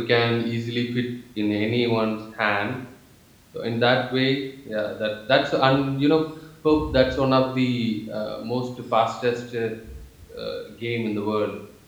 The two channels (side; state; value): both; identical; correlation 1.00